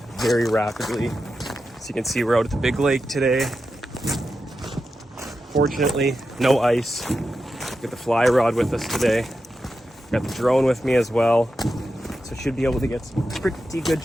very rapidly. As you can see, we're out at the big lake today. Fortunately, no ice. Got the fly rod with us today. Got the drone with me as well. So should be able to get some pretty good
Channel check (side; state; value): both; normal; correlation 0.89